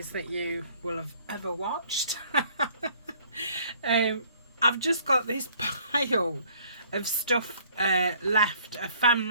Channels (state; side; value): inverted; both; correlation -0.58